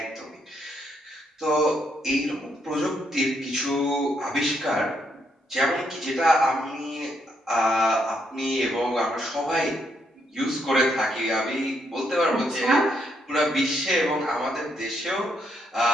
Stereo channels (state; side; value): normal; both; correlation 0.76